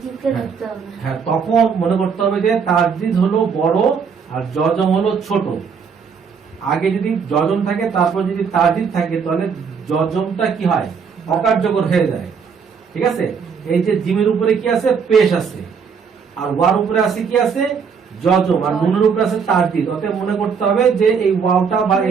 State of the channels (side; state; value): left; quieter; 6.2 dB